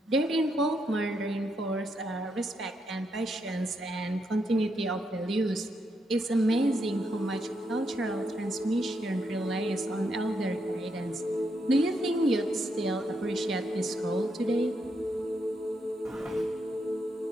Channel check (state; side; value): normal; both; correlation 0.80